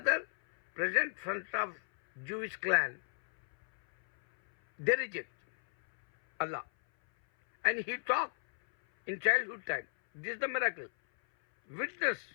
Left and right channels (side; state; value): right; silent; 55 dB below the other